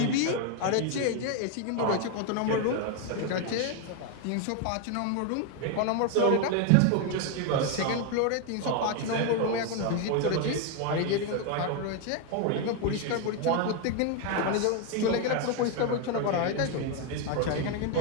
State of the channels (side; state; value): both; different; correlation 0.01